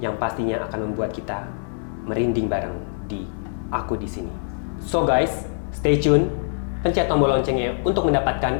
yang pastinya akan membuat kita merinding bareng di Aku di Sini. So guys, stay tune, pencet tombol loncengnya untuk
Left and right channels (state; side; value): silent; right; digital silence